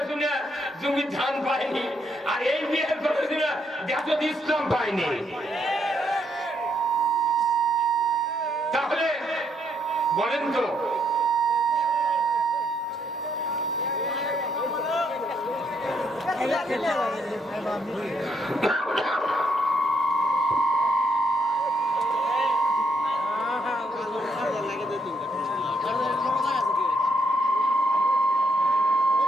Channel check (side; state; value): both; normal; correlation 0.74